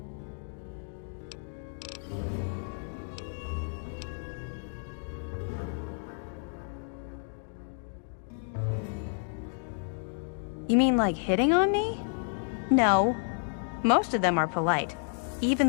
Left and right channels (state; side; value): silent; right; 57 dB below the other